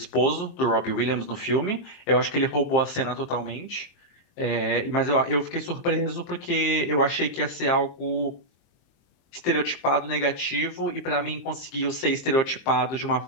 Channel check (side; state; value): right; late; 23 ms